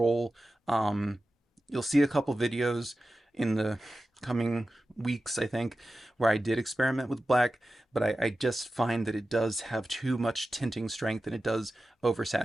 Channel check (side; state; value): both; normal; correlation 0.94